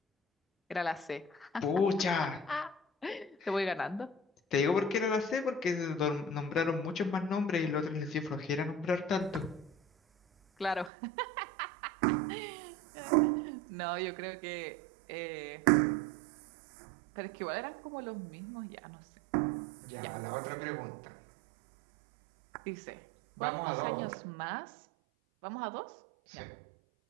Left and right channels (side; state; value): left; drops out; at 10.9 s